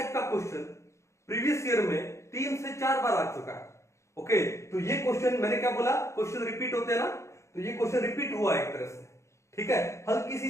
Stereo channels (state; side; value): late; right; 0.14 ms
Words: का क्वेश्चन प्रीवियस ईयर में 3 से 4 बार आ चुका है। ओके, तो ये क्वेश्चन मैंने क्या बोला, क्वेश्चन रिपीट होते हैं ना, तो ये क्वेश्चन रिपीट हुआ एक तरह से, ठीक है। हल्की